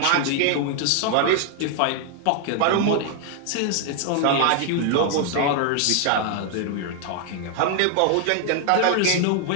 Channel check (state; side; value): different; both; correlation 0.00